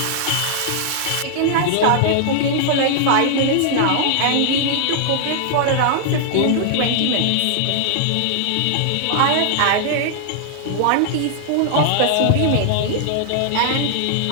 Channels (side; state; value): both; different; correlation -0.01